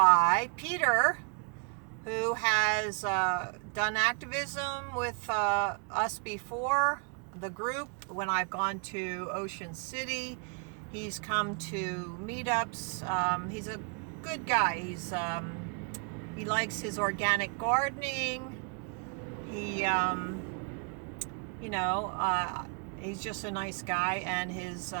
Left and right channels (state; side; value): quieter; left; 36.9 dB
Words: Peter, who has done activism with us before, the group, when I've gone to Ocean City. He's come to meetups. He's a good guy. He likes his organic gardening. He's just a nice guy. And his